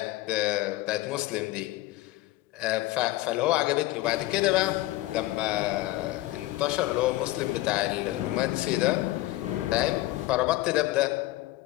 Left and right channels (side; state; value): right; quieter; 17.7 dB